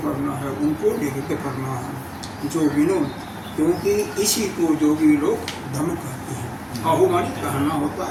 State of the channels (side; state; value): both; identical; correlation 1.00